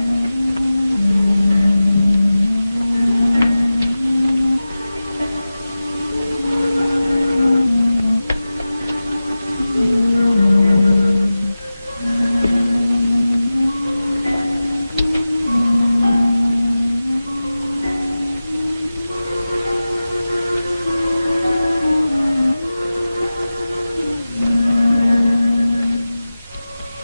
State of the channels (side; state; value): both; inverted; correlation -0.96